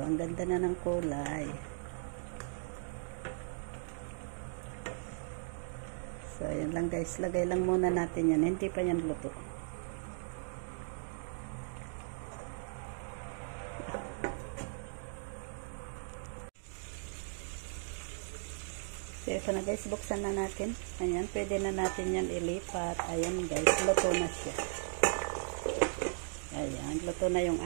Ang ganda na ng kulay. So, ayan lang guys. Lagay lang muna natin yan. Hindi pa yan luto. So, ito na guys, buksan na natin. Ayan, pwede na natin yan ilipat. Ayan guys, luto na siya. Ayan, luto na yung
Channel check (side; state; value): left; silent; digital silence